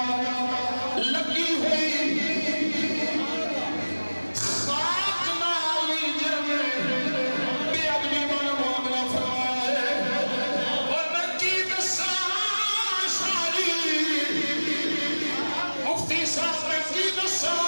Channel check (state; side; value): inverted; both; correlation -1.00